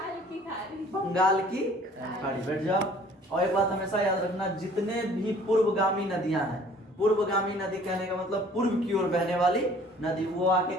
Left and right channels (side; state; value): both; normal; correlation 0.53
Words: बंगाल की खाड़ी। बैठ जाओ। और एक बात हमेशा याद रखना, जितने भी पूर्वगामी नदियां हैं, पूर्वगामी नदी कहने का मतलब पूर्व की ओर बहने वाली नदी, वो आके